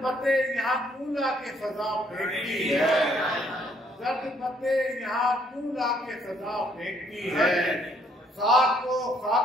पत्ते यहाँ कूला के फजा फेंकती है, जर्द पत्ते यहाँ कूला के फजा फेंकती है। खाक को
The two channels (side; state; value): both; normal; correlation 0.66